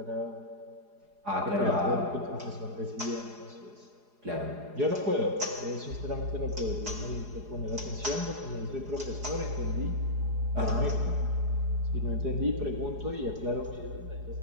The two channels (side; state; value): left; late; 4.8 ms